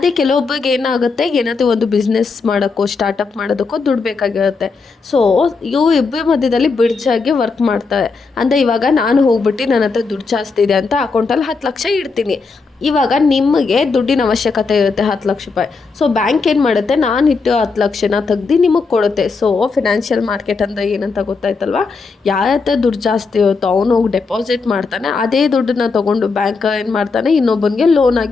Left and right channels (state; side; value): quieter; right; 4.5 dB